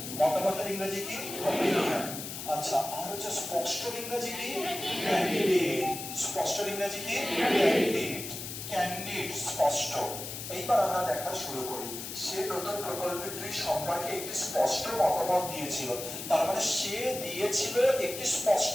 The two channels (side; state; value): left; noise; hiss, 8 dB below the sound